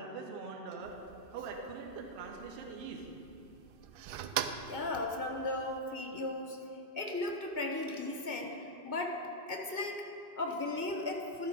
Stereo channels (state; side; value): late; left; 2.6 ms